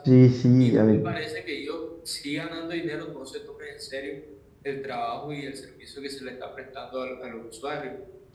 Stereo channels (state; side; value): identical; both; correlation 1.00